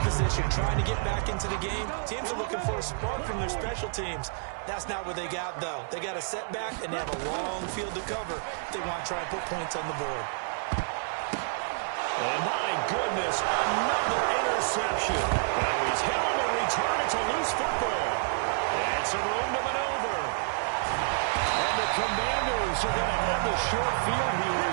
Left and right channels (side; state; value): left; silent; digital silence